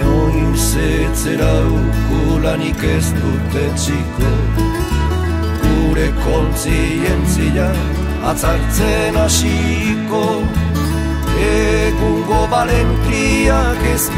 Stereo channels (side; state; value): both; identical; correlation 1.00